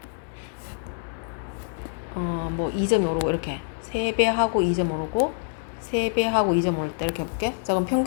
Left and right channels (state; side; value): silent; right; 61 dB below the other